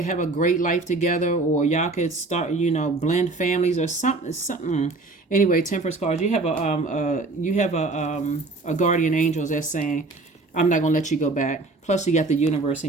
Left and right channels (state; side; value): quieter; left; 3.3 dB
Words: have a great life together, or y'all could start, blend families or something. Anyway, Temperance cards, you have a guardian angel that's saying, I'm not going to let you go back. Plus you got the universe